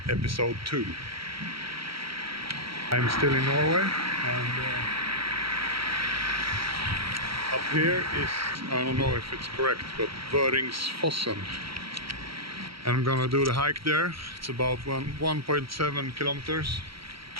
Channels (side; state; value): left; late; 0.75 ms